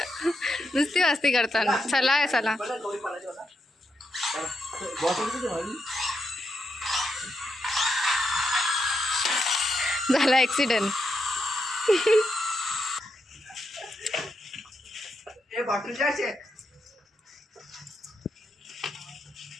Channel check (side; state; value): both; normal; correlation 0.83